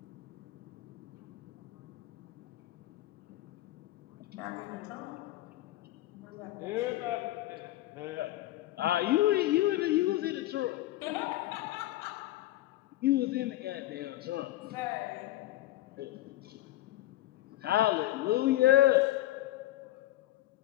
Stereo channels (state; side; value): quieter; right; 15.8 dB